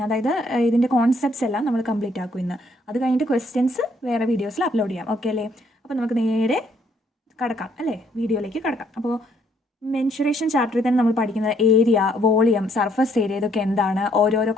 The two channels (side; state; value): both; normal; correlation 0.68